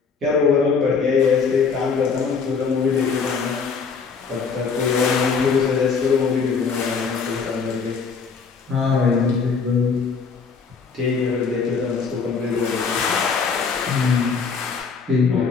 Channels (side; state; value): right; quieter; 5.4 dB